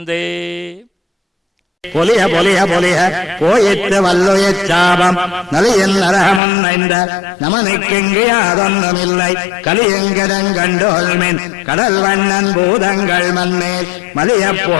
பொலிய பொலிய பொலிய போயிற்று வல்லுயச் சாபம் நலியன் நரகமன் ஐந்த நமனுக்கெங்கு யாதொன்னுமில்லை கலியங்கடங்கண்டோல்மென் கடல் வண்ணன் பூதங்கள் மண்மேல் மலிய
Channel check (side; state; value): right; drops out; at 6.4 s